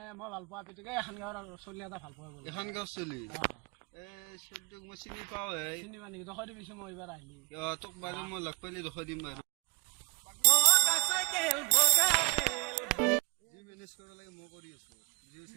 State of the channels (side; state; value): left; quieter; 28.8 dB